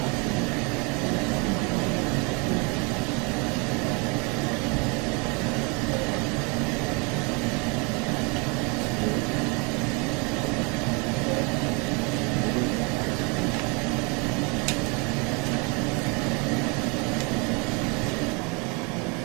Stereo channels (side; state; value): left; quieter; 31.1 dB